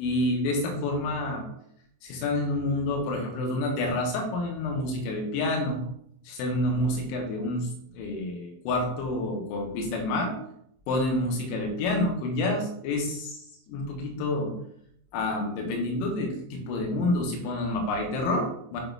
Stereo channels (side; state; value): right; late; 23 ms